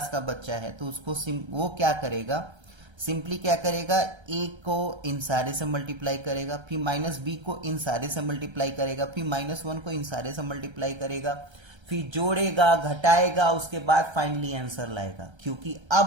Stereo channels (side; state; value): left; late; 1.3 ms